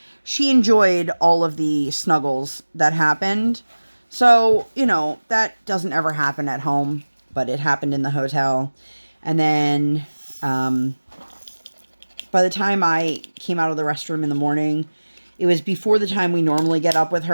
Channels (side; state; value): both; inverted; correlation -1.00